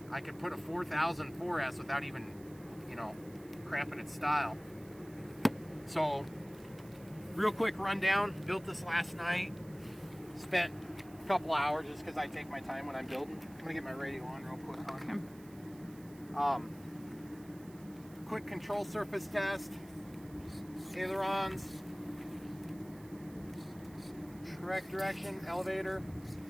4000 4S without even, you know, cramping its style. So real quick rundown, built this last night, spent a couple hours just because I take my time when I'm building. I'm gonna get my radio on real quick on him. Quick control surface test, ailerons, correct direction, elevator,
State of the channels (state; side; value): noise; right; hiss, 23 dB below the sound